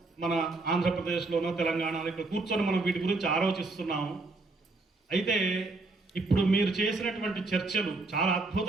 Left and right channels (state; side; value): quieter; left; 3.4 dB